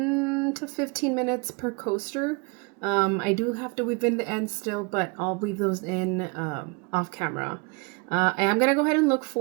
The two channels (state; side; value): quieter; left; 31.0 dB